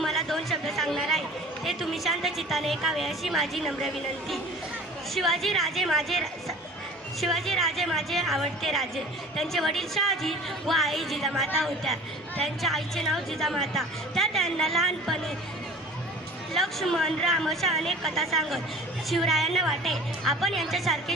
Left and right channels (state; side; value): normal; both; correlation 0.43